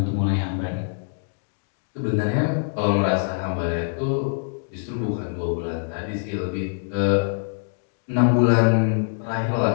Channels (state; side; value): silent; right; digital silence